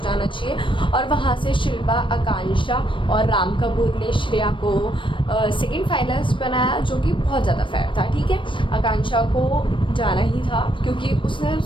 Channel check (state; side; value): late; right; 0.24 ms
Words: चाहिए। और वहाँ से शिल्पा, आकांक्षा और राम कपूर ने श्रेया को सेकंड फाइनलिस्ट बनाया, जो कि बहुत ज़्यादा फेयर था। ठीक है, आकांक्षा को जाना ही था क्योंकि उसने